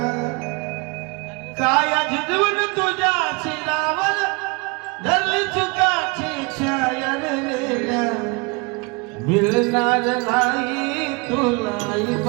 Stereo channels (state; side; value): quieter; left; 29.3 dB